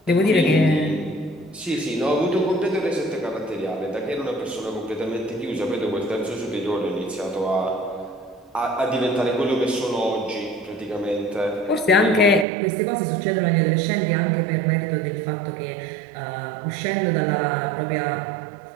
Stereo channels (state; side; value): drops out; left; at 12.5 s